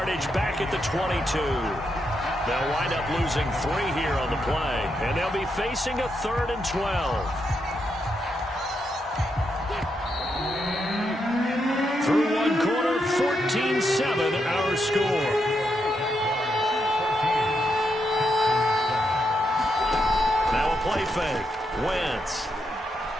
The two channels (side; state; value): both; normal; correlation 0.82